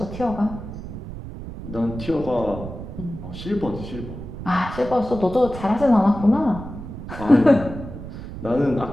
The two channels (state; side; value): noise; right; rumble, 10 dB below the sound